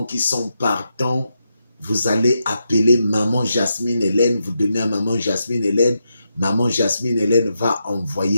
qui sont partants, vous allez appeler Maman Jasmine Hélène, vous donnez à Maman Jasmine Hélène. Maman Jasmine Hélène va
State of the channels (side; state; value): both; inverted; correlation -0.85